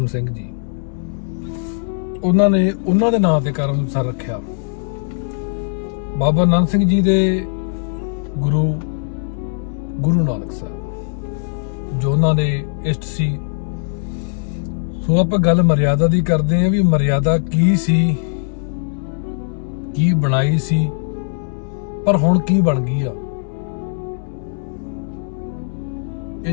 ਸਿੰਘ ਜੀ, ਉਹਨਾਂ ਨੇ ਉਹਨਾਂ ਦੇ ਨਾਂ ਤੇ ਕਰਮਸਰ ਰੱਖਿਆ। ਬਾਬਾ ਨੰਦ ਸਿੰਘ ਜੀ ਦੇ ਗੁਰੂ ਨਾਨਕ ਸਾਹਿਬ ਜੋ ਉਹਨਾਂ ਦੇ ਇਸ਼ਟ ਸੀ। ਸੋ ਆਪਾਂ ਗੱਲ ਮਰਿਆਦਾ ਦੀ ਕਰਦੇ ਆ ਵੀ ਮਰਿਆਦਾ ਕੀ ਸੀ, ਕੀ ਬਣਾਈ ਸੀ, ਪਰ ਹੁਣ ਕੀ ਬਣ ਗਈ ਆ। ਇਹ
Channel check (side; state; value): right; silent; digital silence